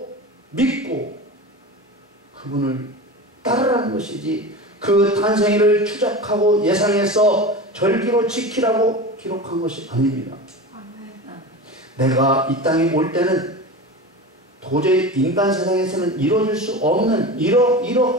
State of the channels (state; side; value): normal; both; correlation 0.29